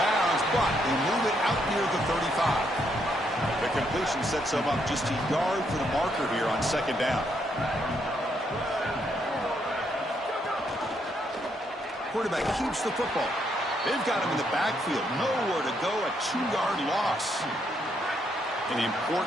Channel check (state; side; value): normal; both; correlation 0.75